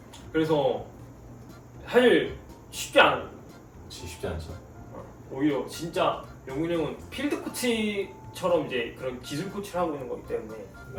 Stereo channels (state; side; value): identical; both; correlation 1.00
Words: 그래서 사실 쉽지 쉽지 않죠. 오히려 진짜 영훈이 형은 필드 코치처럼 이제 그런 기술 코치를 하고 있는 거기 때문에